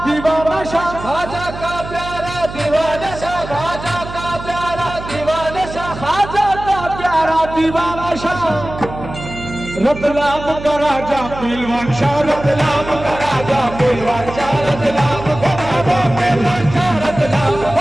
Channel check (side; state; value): right; noise; hum, 11 dB below the sound